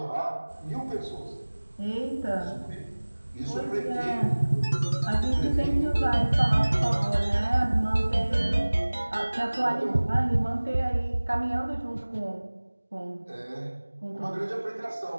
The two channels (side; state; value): both; inverted; correlation -1.00